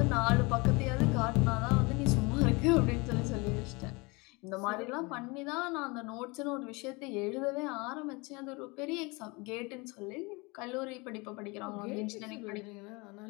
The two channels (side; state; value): right; quieter; 26.8 dB